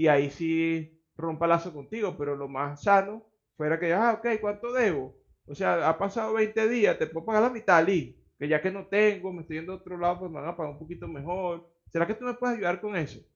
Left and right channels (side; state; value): both; identical; correlation 1.00